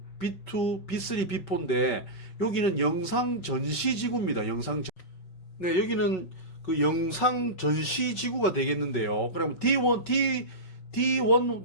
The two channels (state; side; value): late; right; 5.4 ms